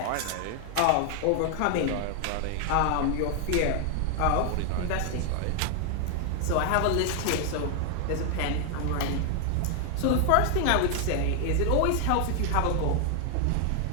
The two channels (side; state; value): both; different; correlation 0.00